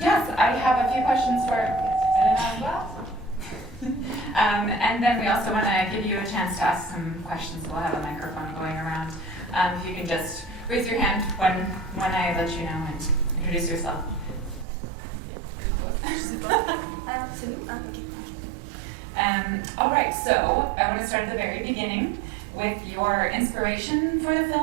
I have a few questions for Elena as well. And then we also want to give you a chance to ask some questions. We'll have a microphone going around. If you can just raise your hand when I let you know and introduce yourself. All right, so I want to start at the very beginning with your inspiration for the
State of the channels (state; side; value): drops out; left; at 14.7 s